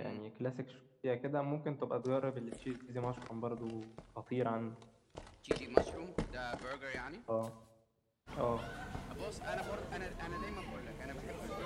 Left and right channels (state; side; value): identical; both; correlation 1.00